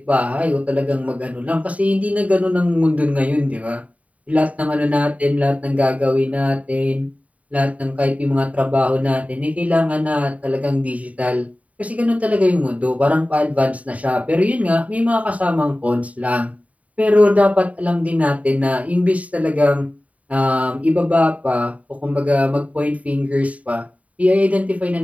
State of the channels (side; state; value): left; late; 0.068 ms